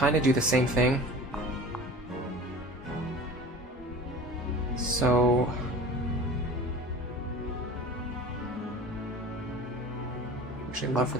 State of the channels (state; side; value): normal; both; correlation 0.39